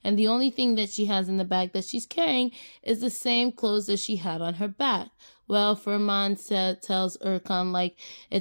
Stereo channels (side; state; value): both; inverted; correlation -1.00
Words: And the only thing that she has in the bag that she's carrying is the same clothes that she had on her back. Well, Firman tells Erkan, like,